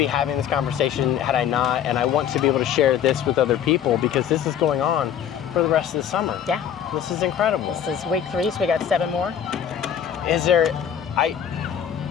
having this conversation had I not, and I want to be able to share this with other people, because this is going on for the rest of the summer. Yeah. This is incredible. This is week 3, so we got 7 more.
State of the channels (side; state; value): right; quieter; 9.2 dB